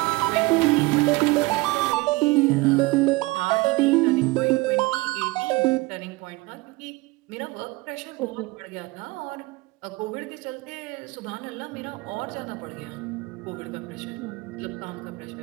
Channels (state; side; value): quieter; left; 22.3 dB